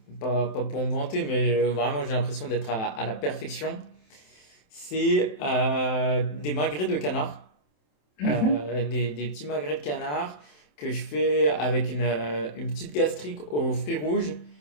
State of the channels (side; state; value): right; late; 27 ms